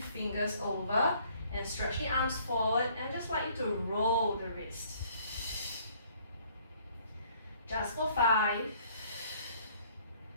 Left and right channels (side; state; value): both; inverted; correlation -0.60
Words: fingers over, and stretch the arms forward, and just like you to roll the wrist. Just for 5,